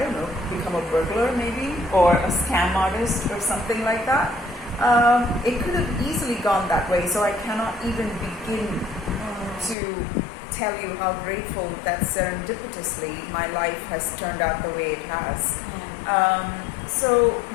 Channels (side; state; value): right; drops out; at 9.8 s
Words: become a burglar maybe, or a scam artist or something like that. It could have easily gone that way, so I cannot even begin to tell you how grateful that serendipitously my life has turned out the way it has. So